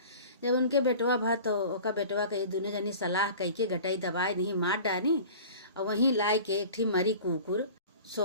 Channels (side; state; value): both; inverted; correlation -0.41